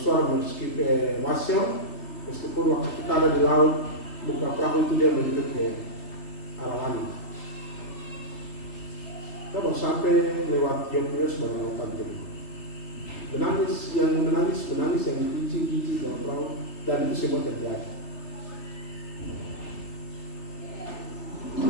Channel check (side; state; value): right; late; 3.5 ms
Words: meski ke Wasyong. Meskipun waktu kita ada di laut, buka perahu itu dia menuju ke arah langit. Kita baru sampai lewat Yogyakarta sebagai lautan biru. Menangis, yang dikunci dalam perahu, dan itu semua terjadi.